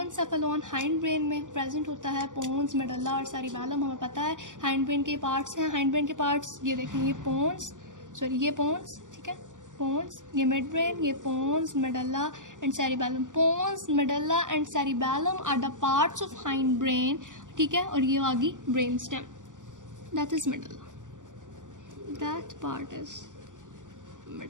hind brain में प्रेजेंट होता है। पोन्स, मेडुला और सेरिबैलम हमें पता है हाइंड ब्रेन के पार्ट्स हैं। हाइंड ब्रेन के पार्ट्स ये देखें, ये पोन्स, ठीक है, पोन्स, ये मिड ब्रेन, ये pons, medulla and cerebellum. Pons, medulla and cerebellum are the parts of hindbrain, ठीक है, और ये आ गई brainstem, that is medulla, that part is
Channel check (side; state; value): left; late; 0.87 ms